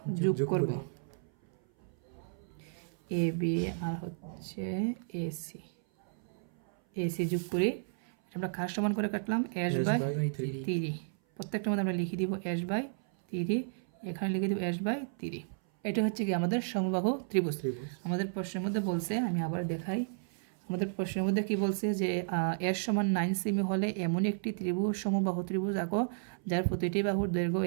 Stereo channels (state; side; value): silent; left; 56 dB below the other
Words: যোগ করব। এ বি আর হচ্ছে এসি যোগ করি। আমরা কার সমান করে কাটলাম? h/3। প্রত্যেকটার মধ্যে আমরা লিখে দিব h/3, এখানে লিখে দিব h/3। এটা হচ্ছে কি আমাদের সমবাহু ত্রিভুজ। আমাদের প্রশ্নের মধ্যে বলছে, আমি আবার দেখাই, আমাদের প্রশ্নের মধ্যে কি বলছে যে এর সমান 9 সেমি হলে এমন একটি ত্রিভুজ সমবাহু ত্রিভুজ আঁকো যার প্রতিটি বাহুর দৈর্ঘ্য